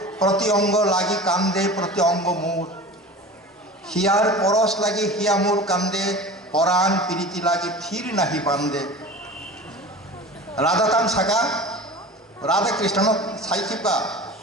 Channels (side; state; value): both; normal; correlation 0.35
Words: प्रति अंग लागी कांदे प्रति अंग मोर हियार परस लागी हिया मोर कांदे पराण प्रीति लागी थीर नाही बांधे राधा तामसागा राधा कृष्ण साइकिपा